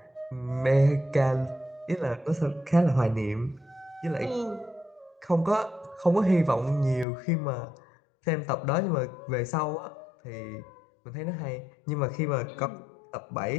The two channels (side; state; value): right; drops out; at 7.1 s